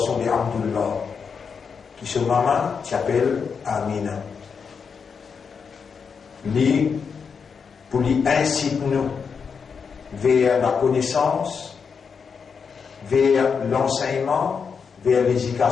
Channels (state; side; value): quieter; right; 6.0 dB